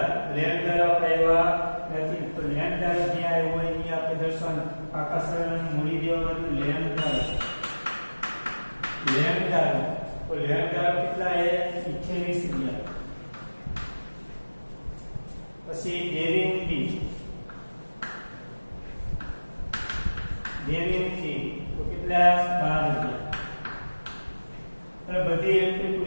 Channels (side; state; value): both; inverted; correlation -1.00